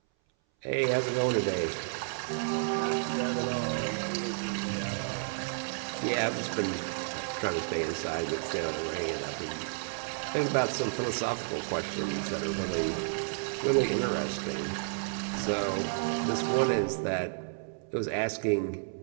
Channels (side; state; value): left; silent; 57 dB below the other